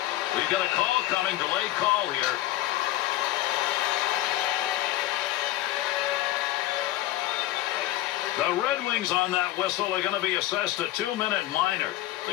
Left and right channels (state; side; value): quieter; right; 15.3 dB